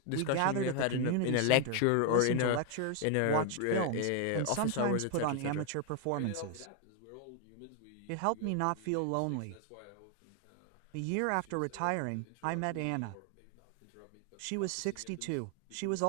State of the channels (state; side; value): different; both; correlation 0.01